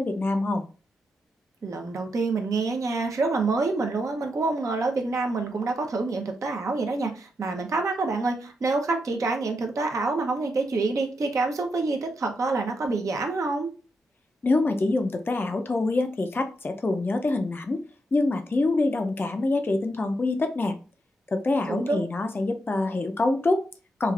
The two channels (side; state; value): both; normal; correlation 0.83